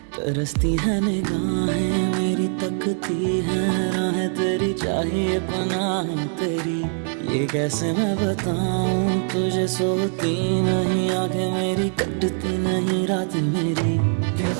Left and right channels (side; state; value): left; silent; 58 dB below the other